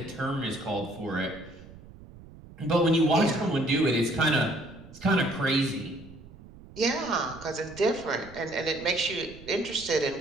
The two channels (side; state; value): right; noise; rumble, 19 dB below the sound